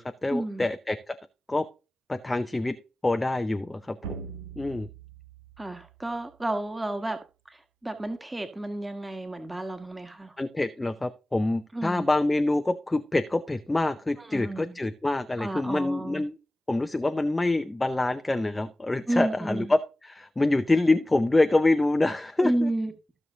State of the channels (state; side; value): normal; both; correlation 0.97